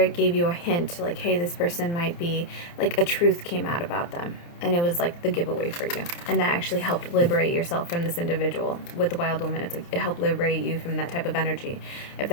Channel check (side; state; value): right; late; 29 ms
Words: gave you a hint, like, hey, this person might be, like, a truth came out about them. And it was, like, the giveaway for you. And that actually helped liberate yourself from this individual. With the Wild Woman, it's like, it helped liberate you from that type of energy. If